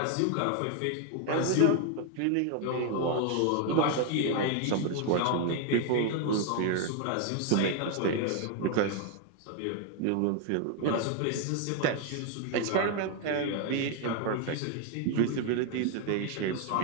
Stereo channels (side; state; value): both; different; correlation 0.00